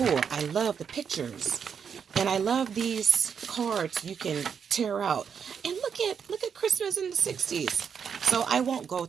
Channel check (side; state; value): left; quieter; 7.0 dB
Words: I love the pictures. And I love these cards you can tear out. And look at Christmas in the 60s. So I won't go